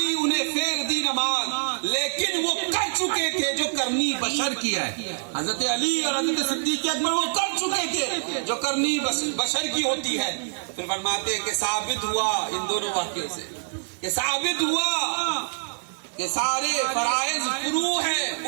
انہیں پھیر دی نماز, لیکن وہ کر چکے تھے جو کرنی بشر کی ہے. حضرت علی اور حضرت صدیق اکبر وہ کر چکے تھے جو کرنی بشر کی ہوتی ہے. پھر فرماتے کہ ثابت ہوا ان دونوں واقعوں سے, کہ ثابت ہوا کہ سارے فرائض فروع ہیں,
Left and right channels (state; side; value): silent; left; 61 dB below the other